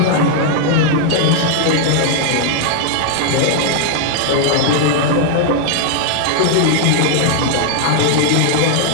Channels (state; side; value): different; both; correlation 0.00